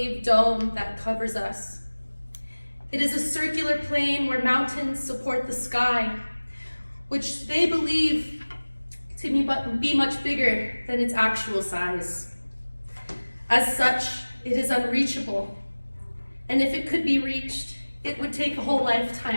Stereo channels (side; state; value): both; inverted; correlation -1.00